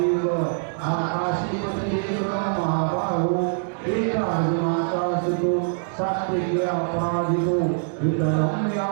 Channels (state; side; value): silent; left; digital silence